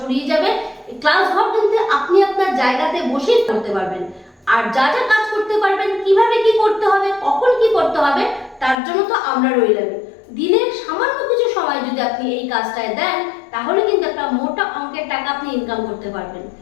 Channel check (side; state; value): right; drops out; at 8.8 s